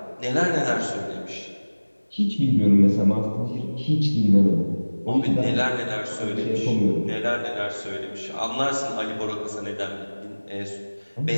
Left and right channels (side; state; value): both; inverted; correlation -1.00